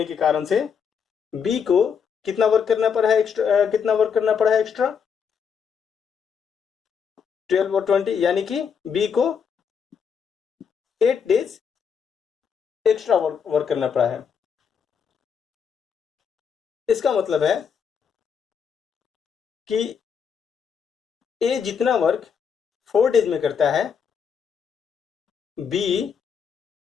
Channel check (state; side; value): quieter; right; 6.8 dB